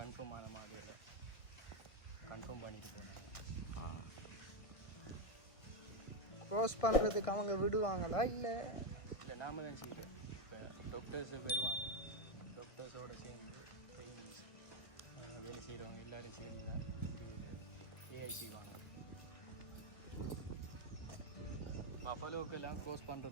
ஆன மாடலில் கன்ஃபார்ம் பண்ணிட்டு போனாங்க. க்ரோஸ் பண்ணுறதுக்கு அவங்க விடுவாங்களா? இல்லை நாம தான் செய்கிறோம். இப்போ டாக்டர்ஸ் வருவாங்க. டாக்டர்ஸோடு சேர்ந்து ட்ரைனிங் வேலை செய்கிறவங்க எல்லோரும் சேர்ந்து தான் ஏஐசி வாங்க. பஃபலோக்கெல்லாம் க்ரோஸ்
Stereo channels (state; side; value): late; right; 1.5 ms